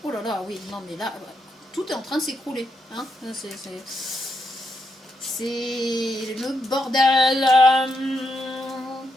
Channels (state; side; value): normal; both; correlation 0.82